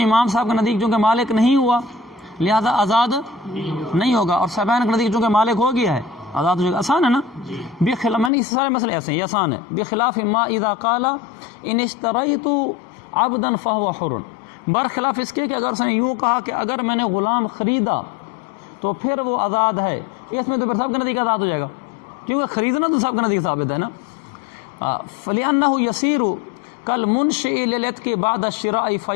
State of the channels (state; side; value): drops out; right; at 8.3 s